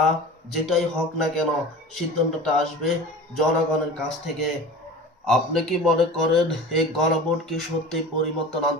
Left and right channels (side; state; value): both; normal; correlation 0.37